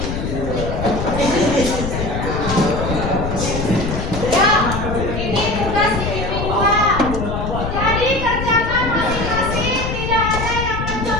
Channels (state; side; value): noise; left; rumble, 4 dB below the sound